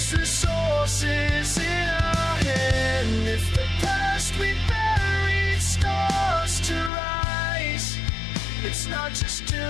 resources in our hand. If the past we buried starts to rise, it's not just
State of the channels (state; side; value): drops out; right; at 6.9 s